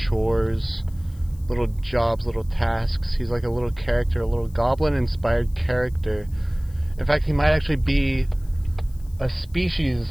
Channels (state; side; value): noise; left; hiss, 28 dB below the sound